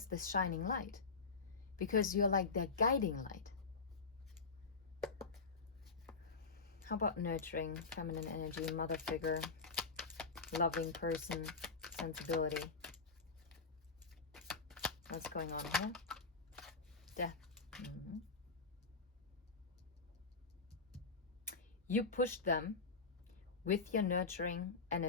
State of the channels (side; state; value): right; quieter; 4.5 dB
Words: this shining light. Because you're like their guiding light. How about nurturing, feminine energy, mother figure, loving person, sensibility? What's going on here? Death. You pushed them with your nurturing